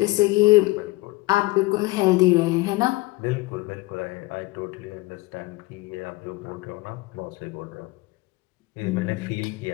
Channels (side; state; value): right; quieter; 21.2 dB